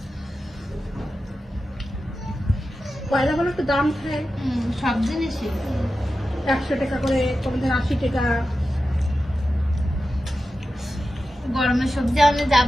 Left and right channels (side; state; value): both; normal; correlation 0.92